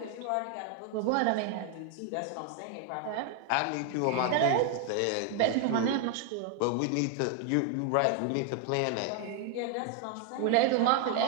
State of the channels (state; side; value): different; both; correlation 0.01